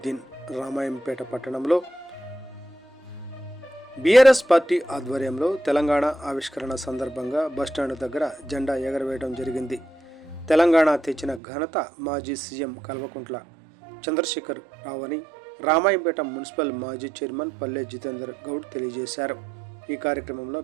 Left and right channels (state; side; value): drops out; left; at 11.4 s